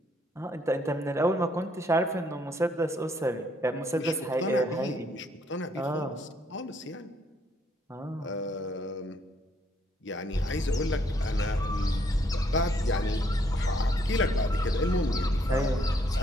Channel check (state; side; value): normal; both; correlation 0.70